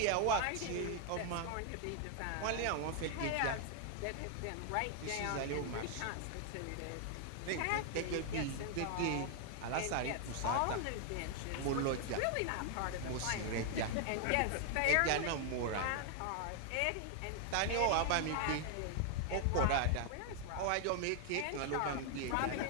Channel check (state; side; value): different; both; correlation 0.00